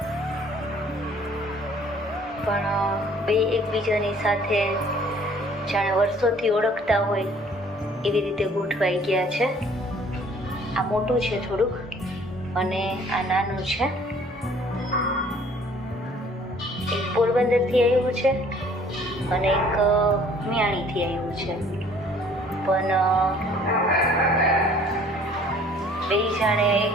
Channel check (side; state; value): both; normal; correlation 0.56